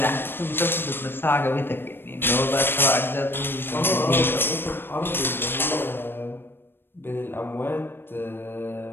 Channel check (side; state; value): right; late; 0.10 ms